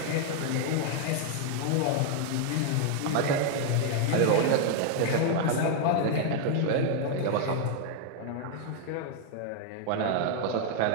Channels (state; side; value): different; both; correlation 0.00